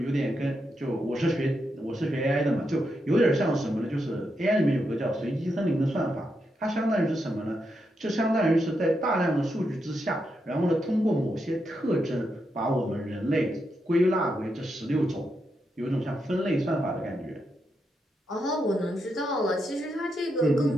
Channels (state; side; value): normal; both; correlation 0.83